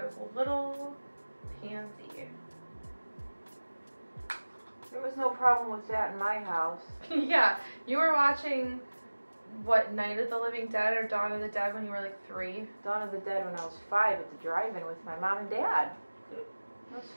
was a little pansy. There was no problem with that in my house. Yeah, you were watching... What, Night of the Living Dead or Dawn of the Dead when you were like 3? Dawn of the Dead when I was 5 at the drive-in with my mom and dad. That was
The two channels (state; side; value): inverted; both; correlation -1.00